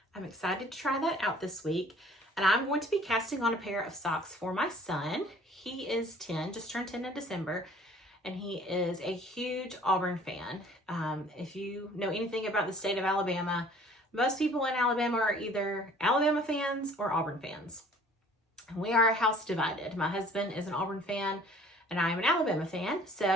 I'm excited to try that out this week. And I'm going to be casting on a pair of socks for my son. He is 10, just turned 10 in December, and he is a huge Auburn fan. If you know anything about the state of Alabama, most people in Alabama are either Alabama fans or Auburn fans. And we are house divided. My husband is an Auburn fan, and I am an Alabama fan.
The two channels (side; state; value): both; normal; correlation 0.52